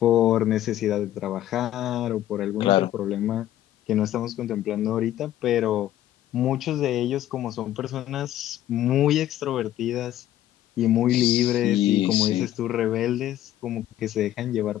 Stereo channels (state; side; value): quieter; right; 12.8 dB